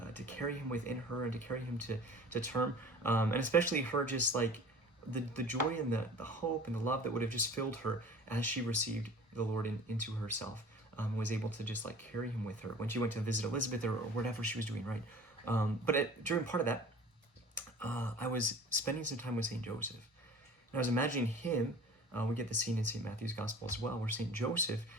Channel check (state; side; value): normal; both; correlation 0.43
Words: to carry him within her and to carry him to term. And especially her just like the joy and the hope and the love that would have just filled her as she received the Lord into herself, was able to just like carry him with her when she went to visit Elizabeth or whatever she was doing, right? But during part of that, I was spending some time with St. Joseph. And I was imagining him, we get the scene in St. Matthew's Gospel as well, where St. Joseph